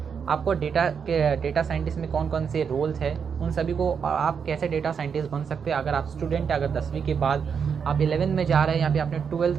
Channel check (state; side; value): quieter; left; 6.6 dB